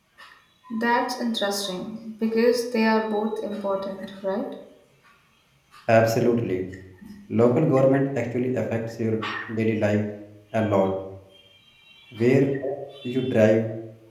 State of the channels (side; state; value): both; identical; correlation 1.00